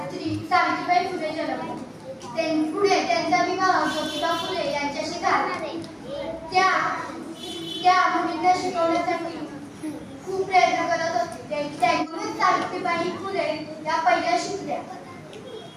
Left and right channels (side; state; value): both; identical; correlation 1.00